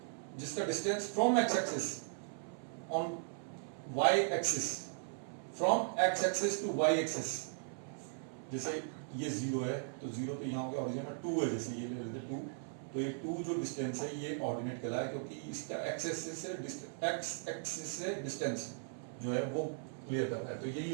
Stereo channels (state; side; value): silent; left; 52 dB below the other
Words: जिसका distance from x axis on y axis, from x axis to y axis, जैसे ये 0 है, तो 0 तो यहाँ हो गया ओरिजिन में, 2 है, जैसे ये ले लेते 2, तो ये 2 जो डिस्टेंस है, ये ऑर्डिनेट कहलाया, क्योंकि इसका एक्स एक्सिस से डिस्टेंस जो है वो क्लियर कर रहा है। तो यही